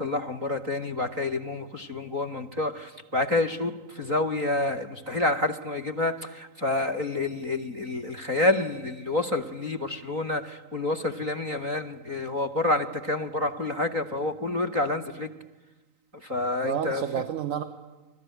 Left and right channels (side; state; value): left; late; 3.9 ms